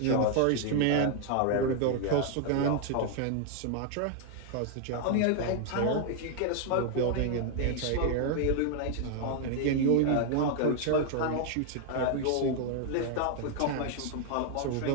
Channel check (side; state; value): both; different; correlation 0.00